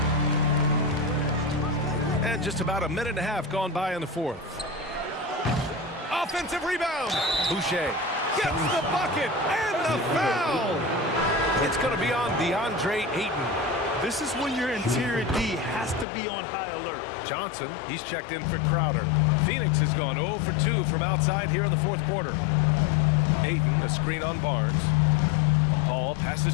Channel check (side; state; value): right; drops out; at 16.1 s